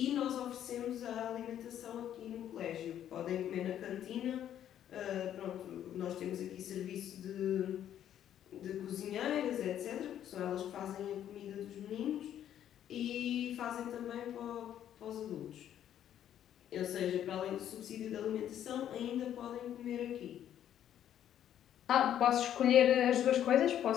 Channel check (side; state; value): right; quieter; 10.6 dB